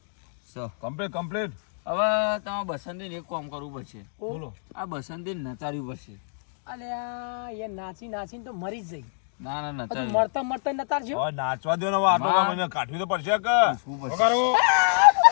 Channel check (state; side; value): silent; right; digital silence